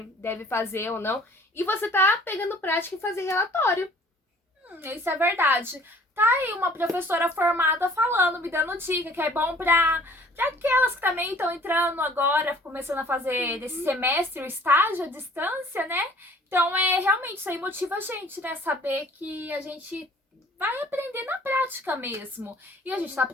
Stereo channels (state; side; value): normal; both; correlation 0.53